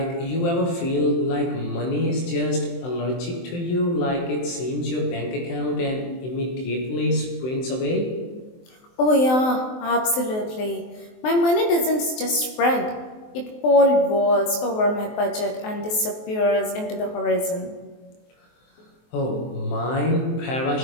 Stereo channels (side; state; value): right; late; 23 ms